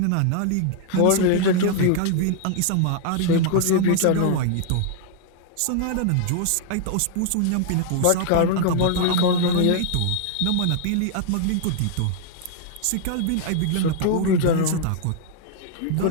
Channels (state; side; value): different; both; correlation -0.01